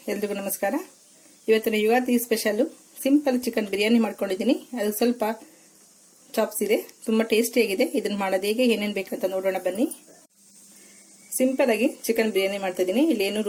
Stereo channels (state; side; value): identical; both; correlation 1.00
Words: ಎಲ್ರಿಗೂ ನಮಸ್ಕಾರ. ಇವತ್ತಿನ Ugadi special simple chicken biryani ಮಾಡ್ಕೊಂಡಿದ್ದೀನಿ. ಅದು ಸ್ವಲ್ಪ ಚಾಪ್ಸ್ ಇದೆ, ತುಂಬಾ ಟೇಸ್ಟಿ ಆಗಿದೆ. ಇದನ್ನ ಮಾಡೋದು ಹೇಗೆ, ಏನೇನು ಬೇಕಂತ ನೋಡೋಣ ಬನ್ನಿ. ಸಿಂಪಲ್ ಆಗಿ ಚಿಕನ್ ಬಿರಿಯಾನಿ ಮಾಡ್ತಾ ಇದೀನಿ. ಇಲ್ಲಿ ಏನು